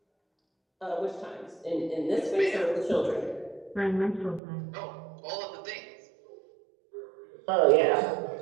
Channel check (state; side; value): drops out; left; at 4.4 s